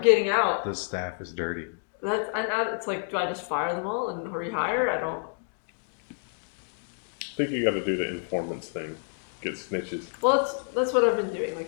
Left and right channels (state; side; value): silent; right; 59 dB below the other